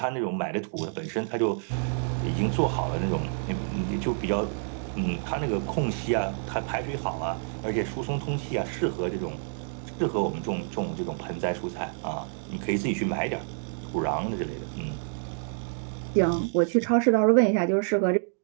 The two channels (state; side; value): silent; left; 59 dB below the other